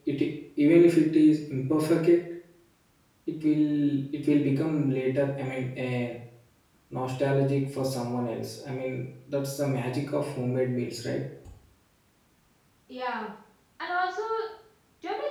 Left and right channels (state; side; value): identical; both; correlation 1.00